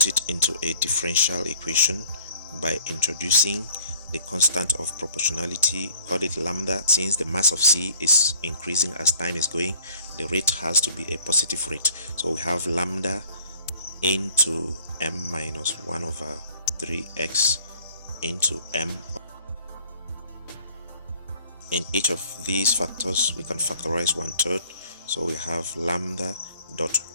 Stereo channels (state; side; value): inverted; both; correlation -0.56